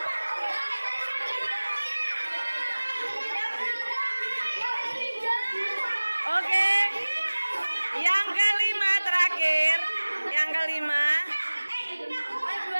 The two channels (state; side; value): inverted; both; correlation -1.00